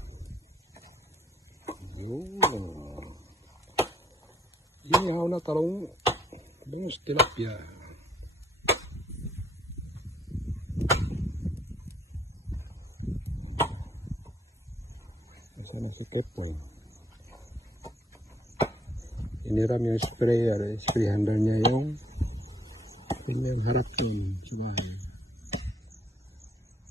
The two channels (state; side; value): normal; both; correlation 0.68